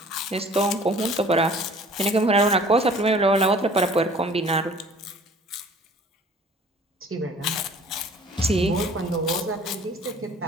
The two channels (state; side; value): normal; both; correlation 0.50